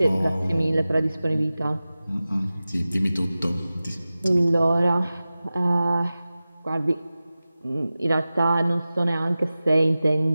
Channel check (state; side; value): inverted; both; correlation -0.96